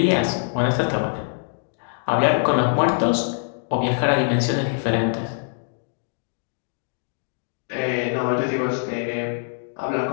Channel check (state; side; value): silent; right; digital silence